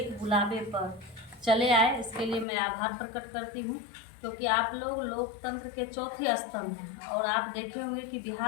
बुलावे पर चले आए, इसके लिए मैं आभार प्रकट करती हूँ। क्योंकि आप लोग लोकतंत्र के चौथे स्तंभ हैं और आप देखे होंगे कि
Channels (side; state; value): right; drops out; at 2.5 s